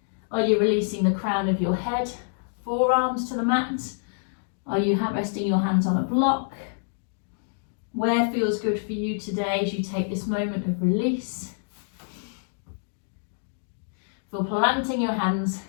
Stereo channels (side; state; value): right; silent; digital silence